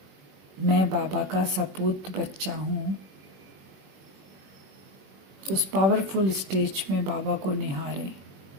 मैं बाबा का सपूत बच्चा हूँ। उस पावरफुल स्टेज में बाबा को निहारें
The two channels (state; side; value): late; left; 21 ms